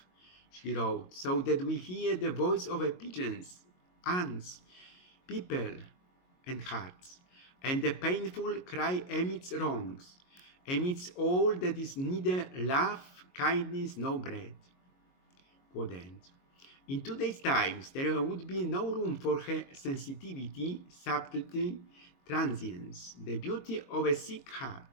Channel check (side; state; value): right; late; 22 ms